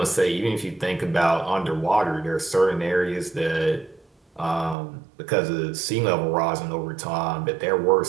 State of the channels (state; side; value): drops out; left; at 4.8 s